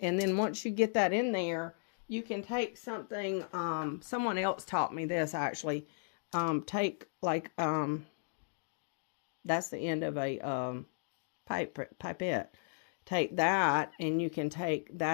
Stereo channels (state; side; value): silent; right; digital silence